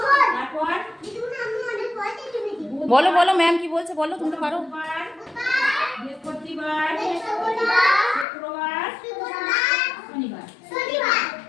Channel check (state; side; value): drops out; right; at 8.2 s